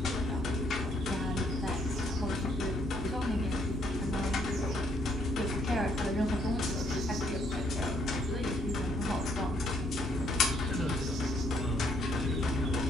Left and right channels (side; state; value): both; normal; correlation 0.69